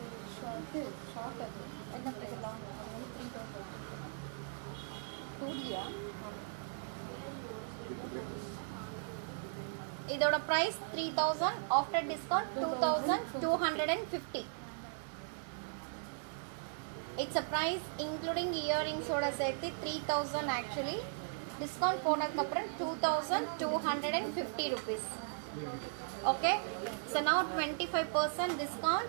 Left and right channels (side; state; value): left; silent; 53 dB below the other